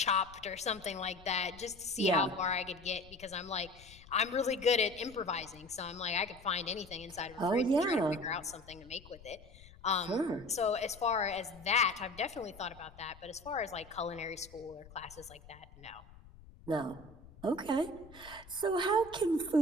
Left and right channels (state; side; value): noise; left; rumble, 21 dB below the sound